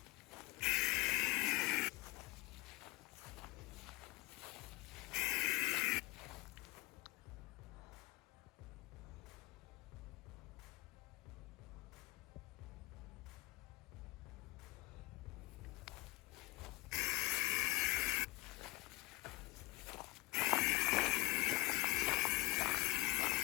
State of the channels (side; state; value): right; quieter; 21.8 dB